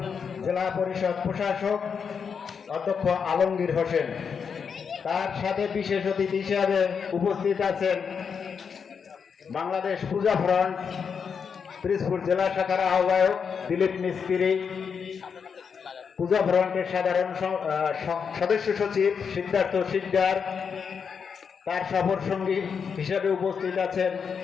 জেলা পরিষদ প্রশাসক অধ্যক্ষ আলমগীর হোসেন। তার সাথে বিশেষ অতিথি হিসাবে উপস্থিত আছেন বাংলাদেশ পূজা ফ্রন্ট পিরোজপুর জেলা শাখার আহ্বায়ক দিলীপ মিস্ত্রি, পূজা ফ্রন্টের সাধারণ সদস্য সচিব সিদ্ধার্থ সিকদার। তার সফর সঙ্গী হিসেবে উপস্থিত আছেন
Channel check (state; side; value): quieter; right; 6.4 dB